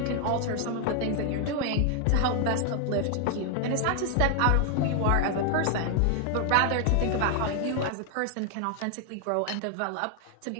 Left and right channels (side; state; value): both; different; correlation 0.00